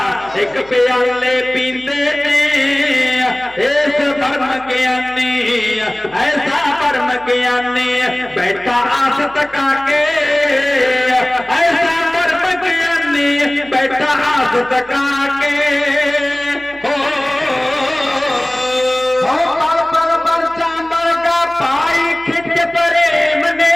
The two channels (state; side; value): noise; right; hum, 25 dB below the sound